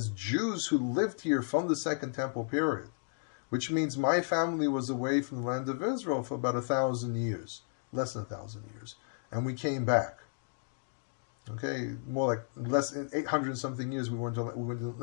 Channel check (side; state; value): right; silent; digital silence